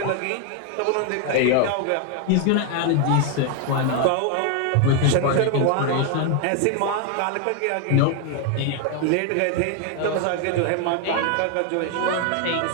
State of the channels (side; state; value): both; different; correlation 0.00